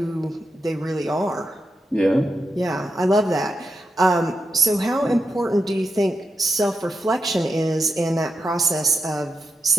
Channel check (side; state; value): both; normal; correlation 0.86